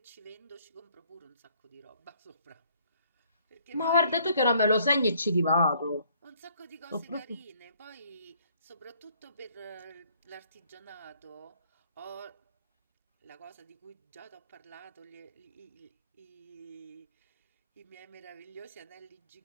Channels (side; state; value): both; inverted; correlation -0.63